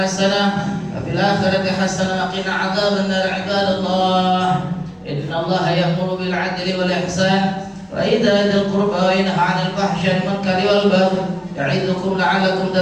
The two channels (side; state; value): both; identical; correlation 1.00